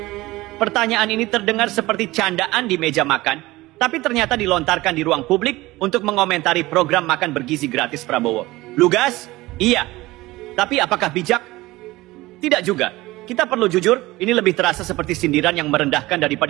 Pertanyaan ini terdengar seperti candaan di meja makan, tapi ternyata dilontarkan di ruang publik untuk mengomentari program makan bergizi gratis Prabowo. Lugas? Iya. Tapi apakah bijak? Tidak juga. Kita perlu jujur, ini lebih terasa seperti sindiran yang merendahkan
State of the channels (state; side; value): quieter; left; 19.3 dB